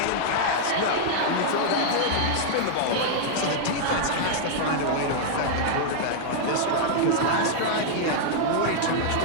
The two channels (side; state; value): both; different; correlation -0.01